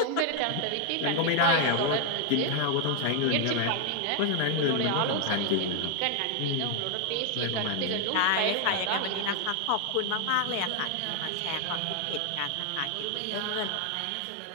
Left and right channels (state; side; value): different; both; correlation 0.00